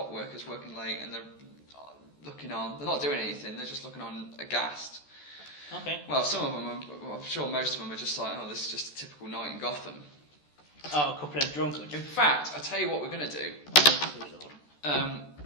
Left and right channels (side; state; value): right; late; 14 ms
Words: workers working late, and they're looking on. They're not doing anything. They're just looking on aghast. Okay. Well, some of them, I'm sure most of them are just like, oh, this is just a typical night in Gotham. Oh, a couple of drunkards. In fact, I tell you what we're going to do.